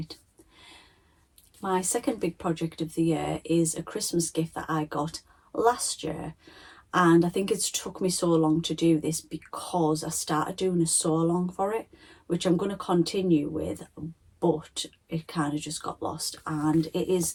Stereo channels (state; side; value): identical; both; correlation 1.00